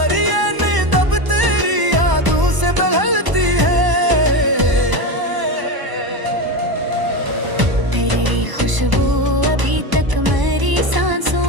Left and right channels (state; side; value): late; left; 1.0 ms